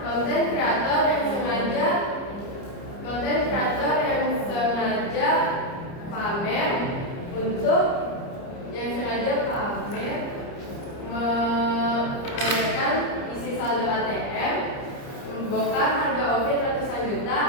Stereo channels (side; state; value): right; late; 30 ms